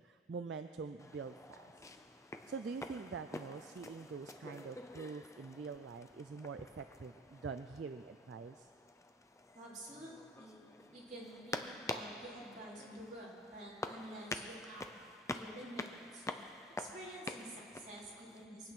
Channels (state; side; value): normal; both; correlation 0.40